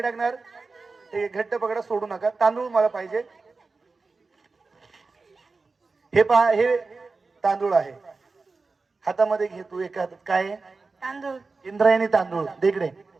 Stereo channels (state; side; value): quieter; left; 4.0 dB